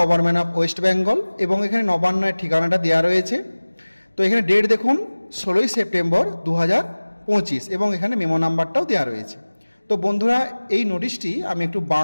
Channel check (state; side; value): inverted; both; correlation -1.00